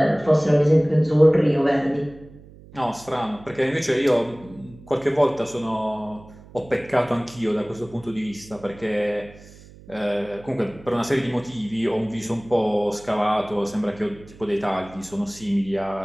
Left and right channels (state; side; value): noise; right; hum, 21 dB below the sound